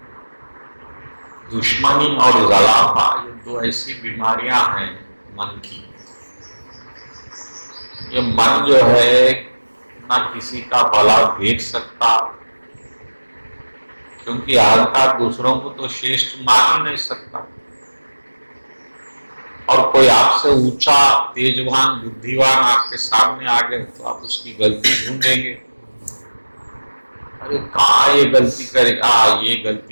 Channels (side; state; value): both; inverted; correlation -1.00